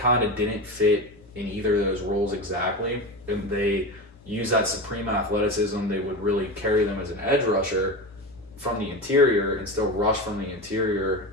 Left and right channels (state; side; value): normal; both; correlation 0.24